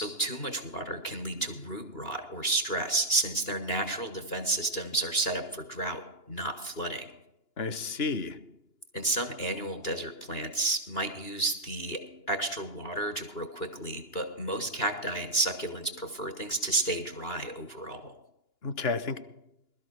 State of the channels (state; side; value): late; right; 2.9 ms